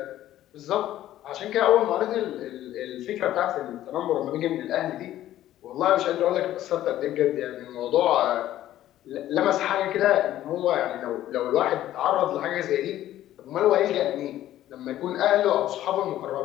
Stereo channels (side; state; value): right; quieter; 13.2 dB